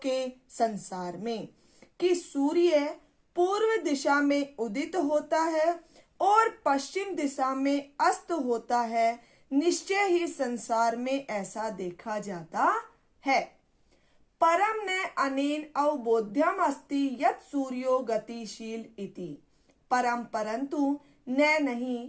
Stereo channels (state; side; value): identical; both; correlation 1.00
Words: संसार में, कि सूर्य पूर्व दिशा में उदित होता है और पश्चिम दिशा में अस्त होता है, निश्चय ही संसार में ऐसा देखा जाता है। परम न अनेन अवबोध्यम अस्ति यत् सूर्यो गतिशील इति। परम परंतु न